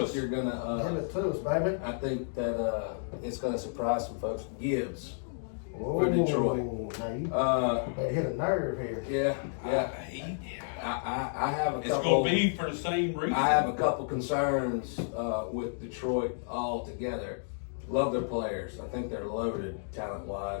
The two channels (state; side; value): silent; right; digital silence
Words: you're Give gonna. it to us, baby. I think that it's gonna surprise some folks. Gibbs. For Detroit. Now you Uh, hit a nerve here. yeah. I have a It's couple. going to be for the same reason. I have a couple concerns with Detroit altogether. Love their players. I think they're loaded